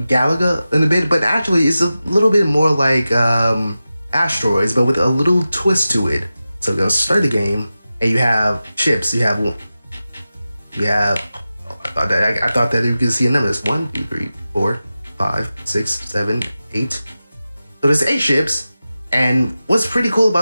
Galaga in a bit, but actually it's a little bit more like Asteroids, but with a little twist to it. So we're gonna start the game, and you have chips. I thought that you could see a number. It's 1, 2, 3, 4, 5, 6, 7, 8. So there's 8 ships, and what's pretty cool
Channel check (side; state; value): both; inverted; correlation -0.94